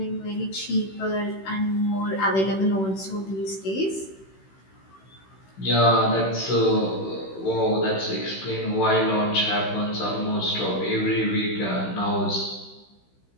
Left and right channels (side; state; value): right; late; 16 ms